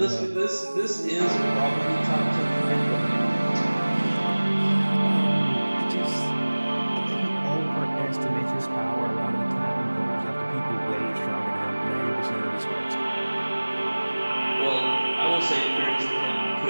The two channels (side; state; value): both; inverted; correlation -1.00